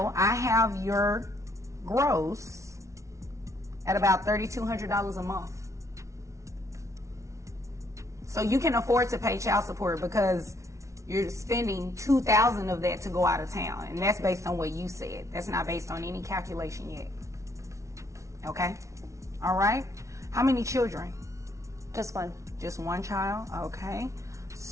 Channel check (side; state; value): left; late; 0.14 ms